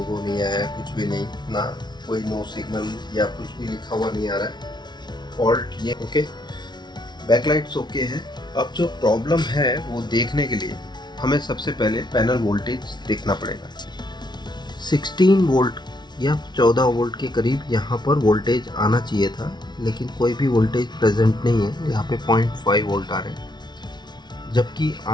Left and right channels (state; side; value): late; right; 0.20 ms